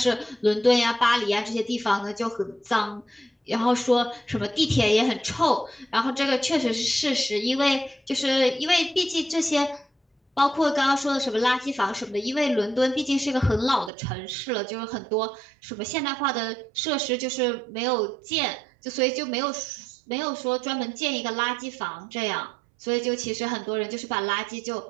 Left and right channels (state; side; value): drops out; left; at 13.9 s